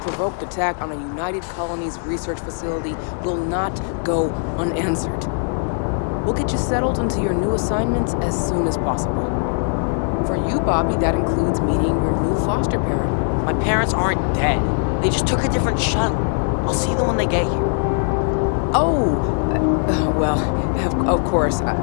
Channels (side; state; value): right; silent; 60 dB below the other